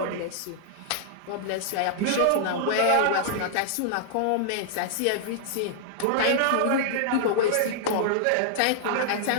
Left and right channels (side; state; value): both; different; correlation -0.01